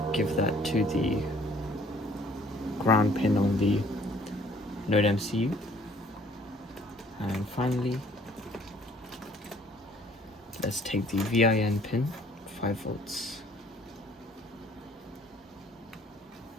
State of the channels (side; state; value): both; normal; correlation 0.58